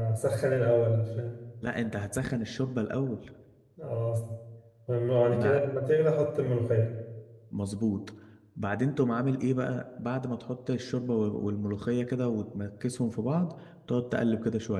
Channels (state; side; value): identical; both; correlation 1.00